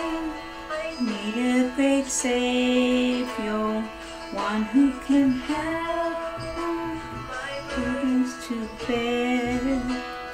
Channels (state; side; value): identical; both; correlation 1.00